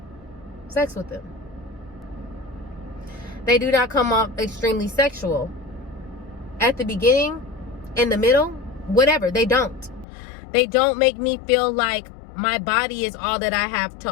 sex with them. They do not come off extremely sexual. At the beginning, in the middle, whatever, they don't. They don't make me feel like my body is all that I have to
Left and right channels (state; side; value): drops out; right; at 10.1 s